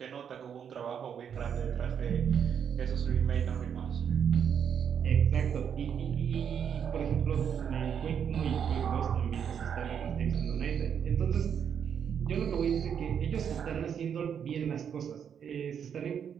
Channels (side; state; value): left; quieter; 7.9 dB